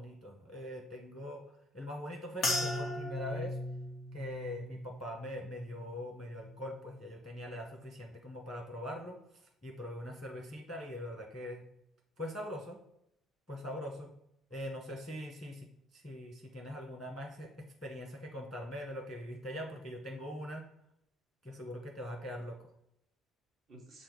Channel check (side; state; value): both; normal; correlation 0.63